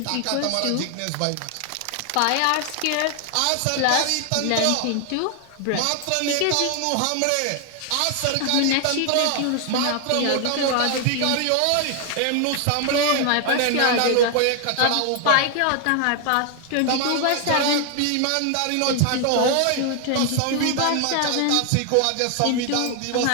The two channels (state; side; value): different; both; correlation 0.00